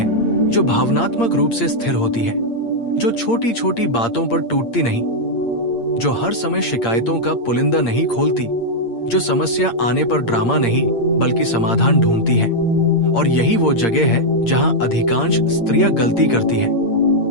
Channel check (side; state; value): right; late; 8.7 ms